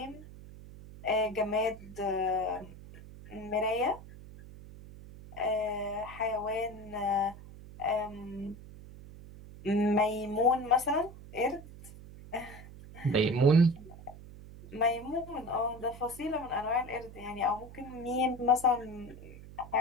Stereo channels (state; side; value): noise; right; hum, 16 dB below the sound